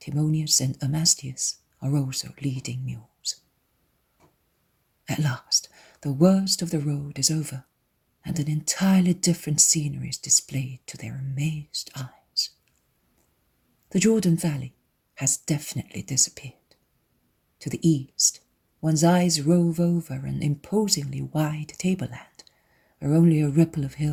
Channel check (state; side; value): identical; both; correlation 1.00